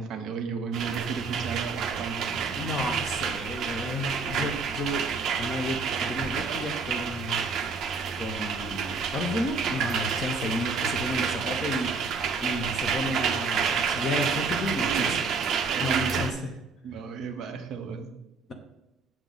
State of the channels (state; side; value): quieter; left; 3.9 dB